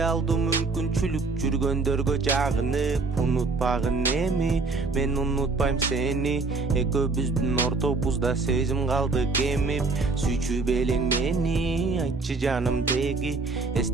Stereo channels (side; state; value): left; quieter; 3.9 dB